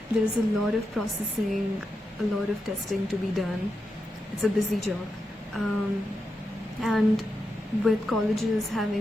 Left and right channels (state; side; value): normal; both; correlation 0.87